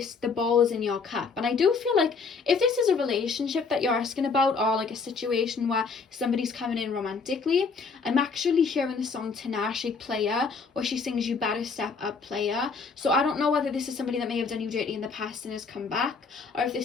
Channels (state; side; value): quieter; right; 4.9 dB